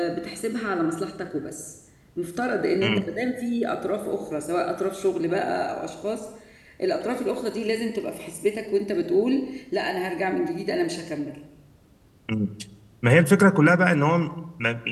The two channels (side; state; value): both; identical; correlation 1.00